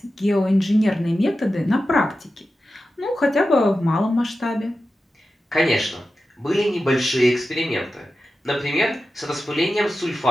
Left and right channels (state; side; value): normal; both; correlation 0.92